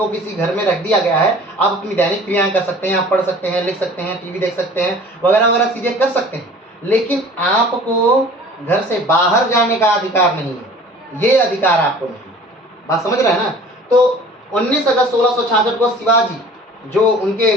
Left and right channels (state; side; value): normal; both; correlation 0.46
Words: किसी घर में रख दिया गया है, आप अपनी दैनिक क्रियाएं कर सकते हैं, आप पढ़ सकते हैं, लिख सकते हैं, टीवी देख सकते हैं, वगैरह वगैरह चीजें कर सकते हैं, लेकिन आपको घर से बाहर जाने का अधिकार नहीं है, ये अधिकार आपको नहीं है। बात समझ रहे हैं ना। तो 19 अगस्त 1666 को शिवाजी जो उनके